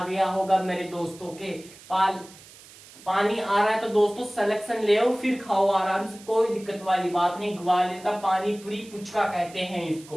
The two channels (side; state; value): right; noise; hiss, 21 dB below the sound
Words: गया होगा मेरे दोस्तों के। पानी आ रहा है तो दोस्तों सिलेक्शन ले आओ फिर खाओ आराम से, कोई दिक्कत वाली बात नहीं। ग्वालियर का पानी पूरी पुचका कहते हैं